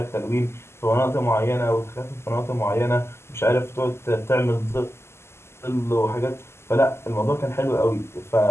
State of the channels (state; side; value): late; right; 0.12 ms